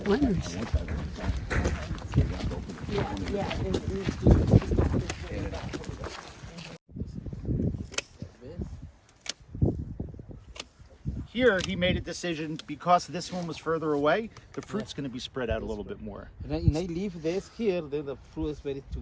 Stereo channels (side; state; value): both; identical; correlation 1.00